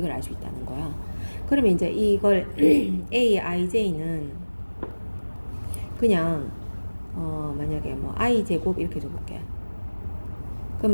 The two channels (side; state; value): both; inverted; correlation -1.00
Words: 알 수 있다는 거야. 그러면 이제 이걸 A, IJ는 그냥 만약에 뭐 I 제곱 이렇게 줘볼게.